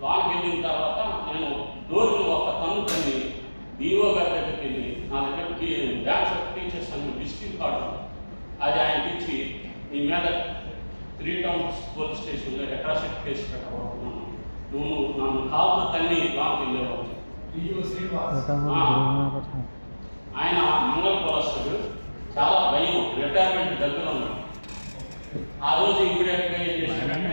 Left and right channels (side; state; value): both; inverted; correlation -1.00